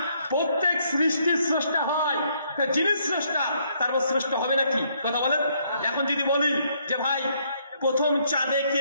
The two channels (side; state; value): both; inverted; correlation -0.70